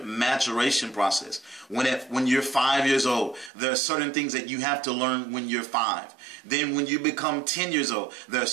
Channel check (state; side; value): drops out; left; at 3.5 s